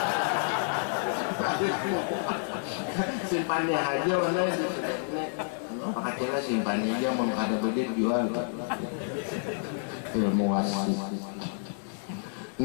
simpannya aja warna pakailah simpannya aja mau ada bedit jual ilmu wasi.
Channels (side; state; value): right; silent; 58 dB below the other